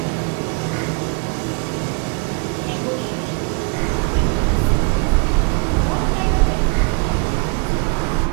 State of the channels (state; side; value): quieter; left; 34.0 dB